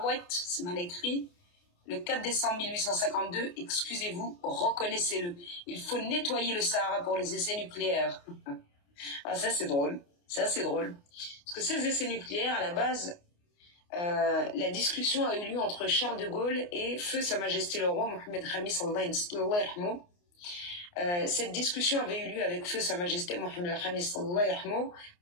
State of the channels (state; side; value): late; right; 29 ms